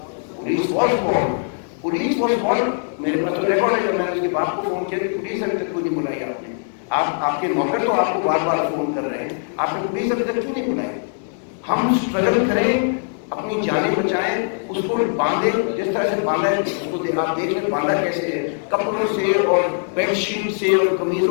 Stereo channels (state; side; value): silent; right; digital silence